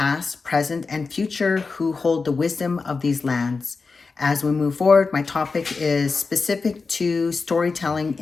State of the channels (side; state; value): right; quieter; 4.4 dB